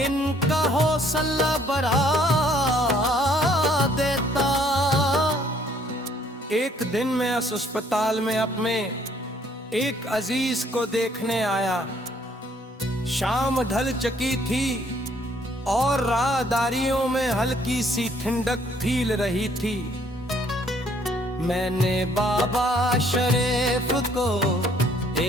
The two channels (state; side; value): normal; both; correlation 0.63